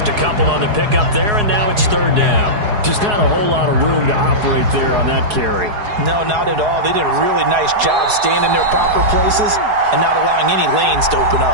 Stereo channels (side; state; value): left; late; 4.8 ms